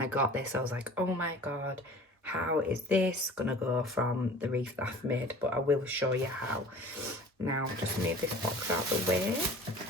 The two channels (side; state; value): both; normal; correlation 0.44